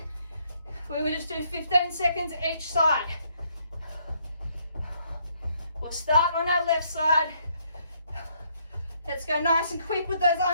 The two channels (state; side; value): inverted; both; correlation -0.69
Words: we will just do 15 seconds each side. We'll start on our left side. Let's go nice and quick with those